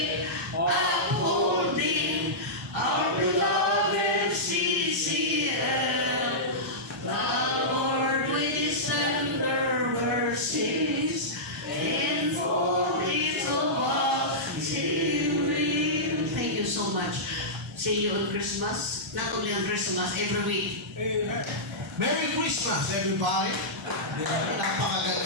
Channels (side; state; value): both; normal; correlation -0.14